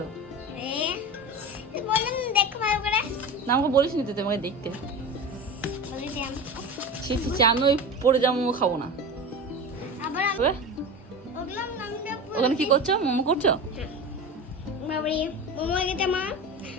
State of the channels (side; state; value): both; normal; correlation 0.28